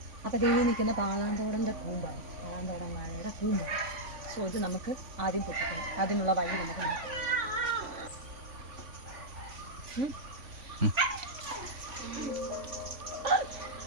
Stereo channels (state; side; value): late; left; 3.5 ms